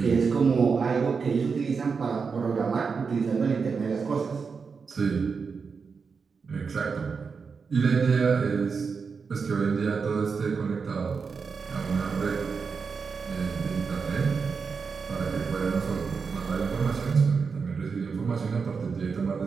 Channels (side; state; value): left; quieter; 5.3 dB